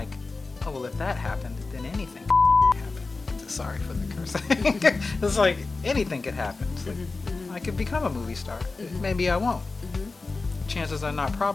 if that happened, then anything can happen. Sorry for the cursing. It's like, anything could happen. It's like, I could become a movie star. Maybe I won't. Chances are not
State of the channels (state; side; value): quieter; right; 3.8 dB